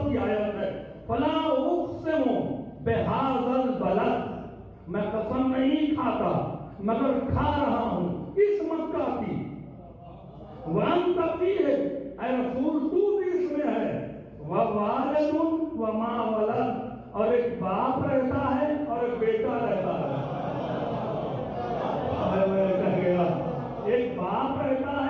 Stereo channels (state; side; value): identical; both; correlation 1.00